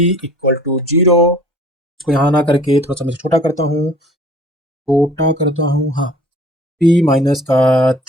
इक्वल टू 0। इसको यहाँ ना करके थोड़ा सा मैं छोटा करता हूँ, हाँ, p माइनस का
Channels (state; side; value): normal; both; correlation 0.50